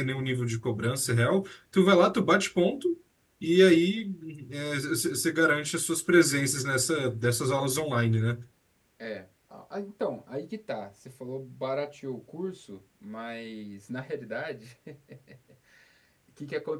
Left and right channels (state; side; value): identical; both; correlation 1.00